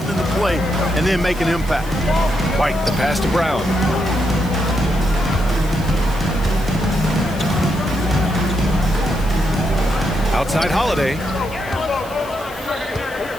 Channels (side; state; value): left; noise; hiss, 20 dB below the sound